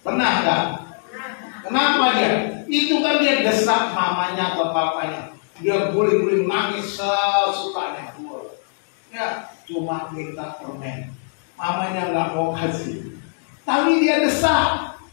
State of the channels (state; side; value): silent; right; digital silence